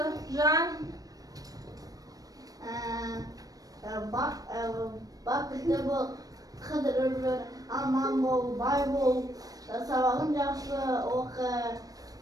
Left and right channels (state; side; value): late; left; 0.18 ms